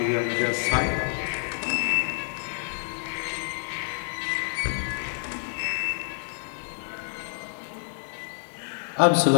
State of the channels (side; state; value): right; silent; digital silence